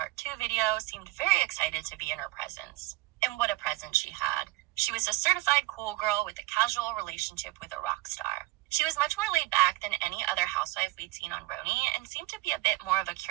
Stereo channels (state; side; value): quieter; left; 20.1 dB